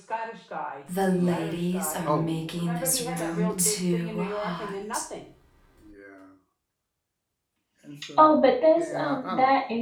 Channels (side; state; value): both; identical; correlation 1.00